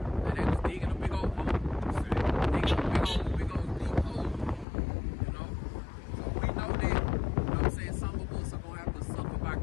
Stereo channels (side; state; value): right; drops out; at 4.7 s